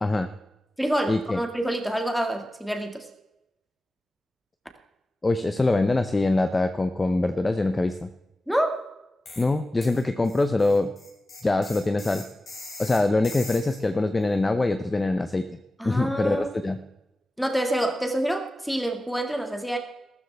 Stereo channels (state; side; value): normal; both; correlation 0.94